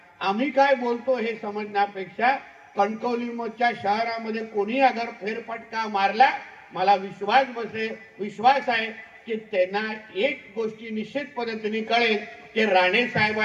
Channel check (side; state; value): both; identical; correlation 1.00